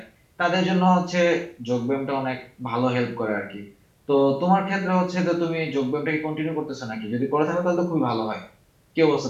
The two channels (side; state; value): both; identical; correlation 1.00